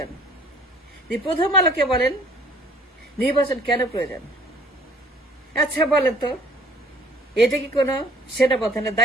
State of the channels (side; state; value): both; normal; correlation 0.55